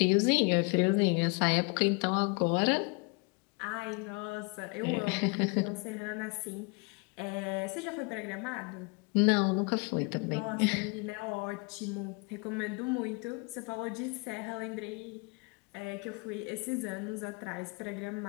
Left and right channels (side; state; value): right; quieter; 30.6 dB